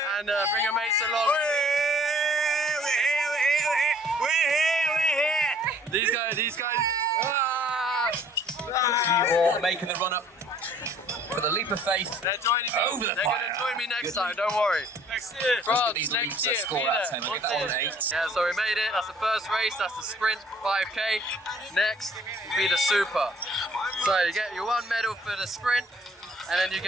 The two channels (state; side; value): normal; both; correlation 0.57